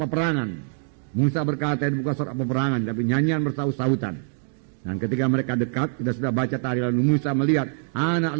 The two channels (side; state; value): left; silent; digital silence